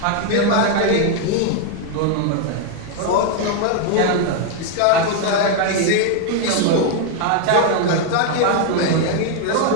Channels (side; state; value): both; different; correlation 0.00